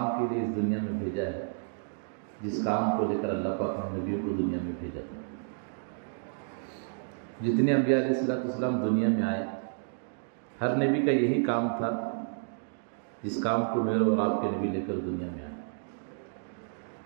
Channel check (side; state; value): left; silent; digital silence